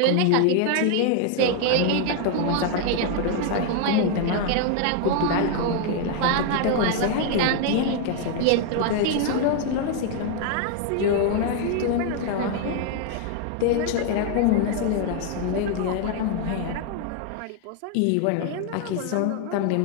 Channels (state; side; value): different; both; correlation 0.00